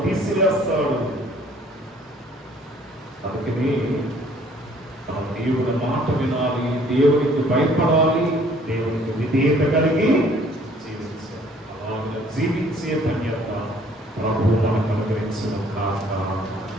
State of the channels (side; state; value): both; normal; correlation 0.58